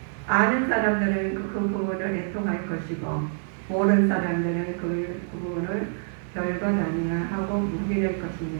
아는 사람들은 그 부분을 애통할 것이고 모르는 사람들은 그 부분을 별것 아니야 하고 묵인할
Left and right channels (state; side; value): silent; left; digital silence